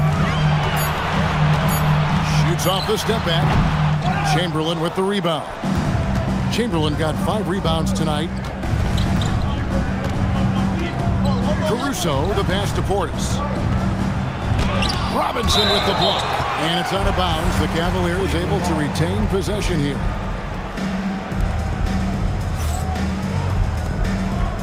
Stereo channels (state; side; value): identical; both; correlation 1.00